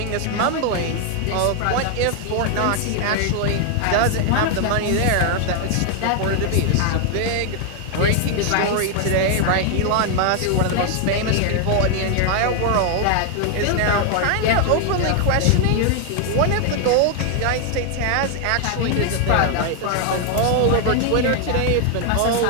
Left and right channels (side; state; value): both; different; correlation 0.00